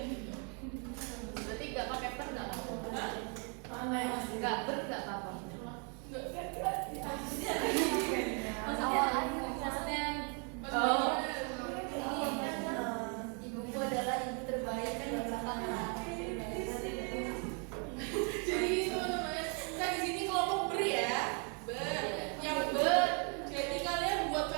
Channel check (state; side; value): quieter; left; 37.7 dB